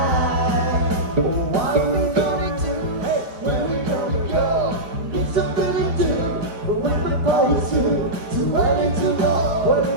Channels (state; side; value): late; left; 4.3 ms